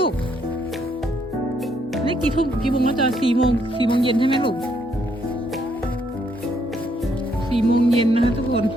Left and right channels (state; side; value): normal; both; correlation 0.72